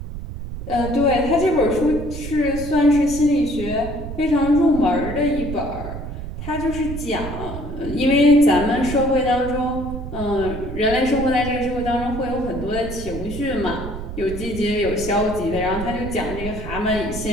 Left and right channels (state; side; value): noise; right; rumble, 8 dB below the sound